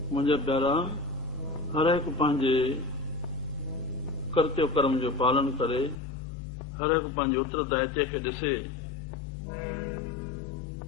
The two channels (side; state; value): right; drops out; at 6.0 s